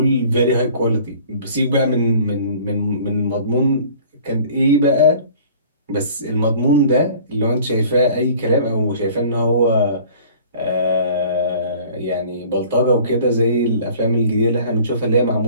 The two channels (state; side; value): inverted; both; correlation -0.49